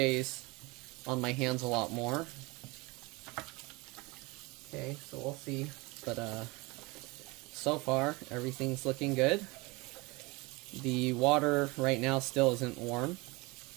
on my hands a lot more. Okay, so we'll see. But so far, everything's looking good. The water right now still isn't warm.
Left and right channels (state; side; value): quieter; left; 25.0 dB